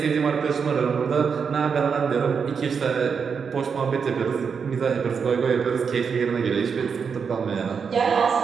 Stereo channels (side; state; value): left; quieter; 6.1 dB